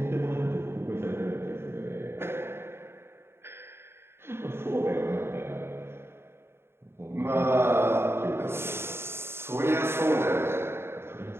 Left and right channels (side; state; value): left; late; 0.12 ms